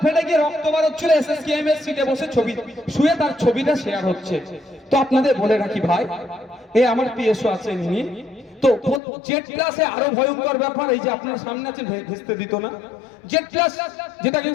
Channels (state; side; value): drops out; right; at 9.0 s